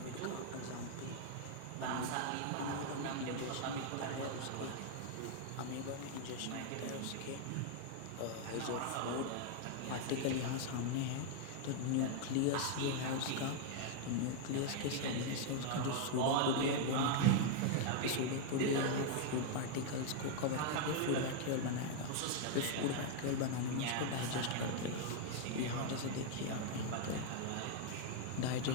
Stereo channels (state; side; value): different; both; correlation 0.00